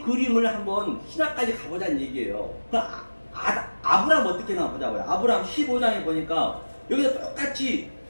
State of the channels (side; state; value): both; inverted; correlation -1.00